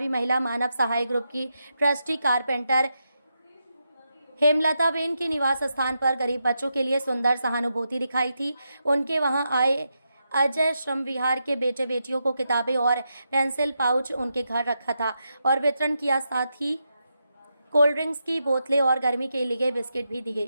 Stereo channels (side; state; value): both; inverted; correlation -0.85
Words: महिला मानव सहाय ग्रुप की ट्रस्टी कारपेंटर हेमलता बेन के निवास स्थान पर गरीब बच्चों के लिए सुंदर सहानुभूति दिखाई थी। उनके वहां आए अजय श्रम विहार के बेटे बेटियों को किताबें और पेंसिल पाउच उनके घर रखा था और वितरण किया। साथ ही कोल्ड ड्रिंक्स की बोतलें और गर्मी के लिए बिस्किट भी